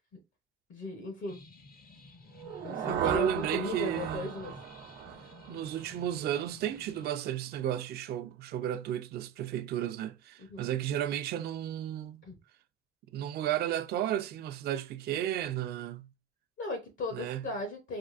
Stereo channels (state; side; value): quieter; left; 7.4 dB